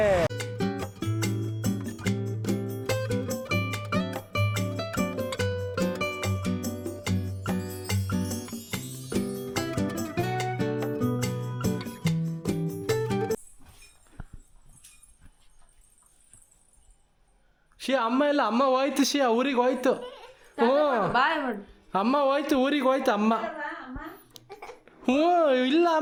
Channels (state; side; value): identical; both; correlation 1.00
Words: ಶಿಯಾ ಅಮ್ಮ ಇಲ್ಲ, ಅಮ್ಮ ಹೋಯ್ತು. ಶಿಯಾ ಊರಿಗೆ ಹೋಯ್ತು. ಅಮ್ಮ ಹೋಯ್ತು, ಊರಿಗೆ ಹೋಯ್ತು ಅಮ್ಮ. ಇಲ್ಲ